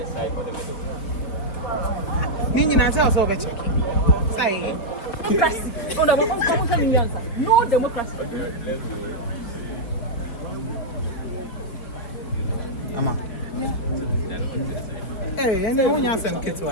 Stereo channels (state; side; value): late; right; 4.2 ms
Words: Nini answer also be check. Say. No democracy. Ama. Hey, and then when you send kids